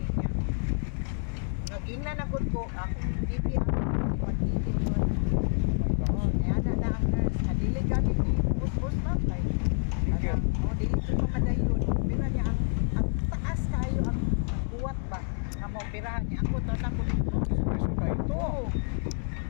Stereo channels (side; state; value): right; silent; 59 dB below the other